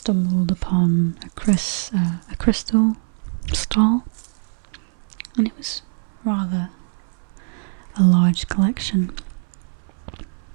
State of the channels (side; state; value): left; silent; 60 dB below the other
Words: upon a crystal stall, and it was rather a large collection.